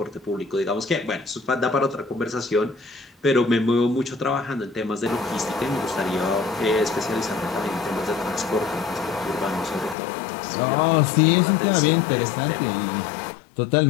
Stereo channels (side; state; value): right; drops out; at 10.0 s